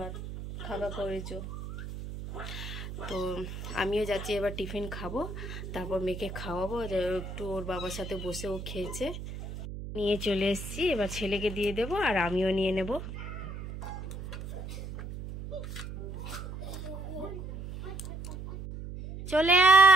খাওয়া করেছো। তো আমিও যাচ্ছি এবার টিফিন খাবো, তারপর মেয়েকে খাওয়াবো। একটু ওর বাবার সাথে বসে ও খেয়েছে, নিয়ে চলে এসেছি। এবার ছেলেকে দিয়ে দেবো আর আমিও নিয়ে নেব। চলে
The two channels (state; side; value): noise; right; hum, 9 dB below the sound